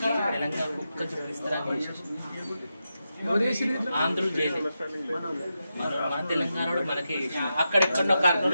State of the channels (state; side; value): inverted; both; correlation -0.88